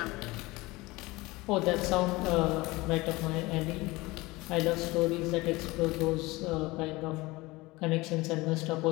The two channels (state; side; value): quieter; right; 21.6 dB